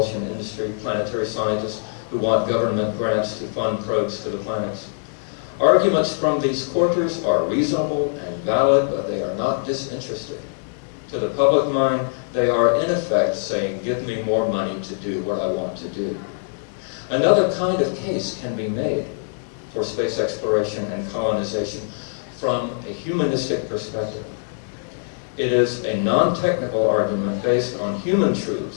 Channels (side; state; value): right; silent; digital silence